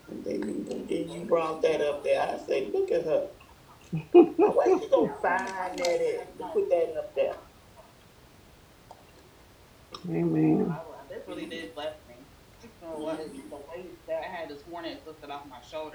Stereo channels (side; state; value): both; identical; correlation 1.00